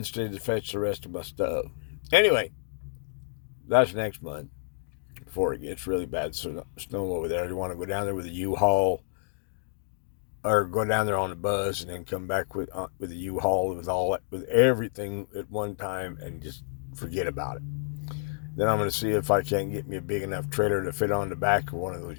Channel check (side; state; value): right; silent; digital silence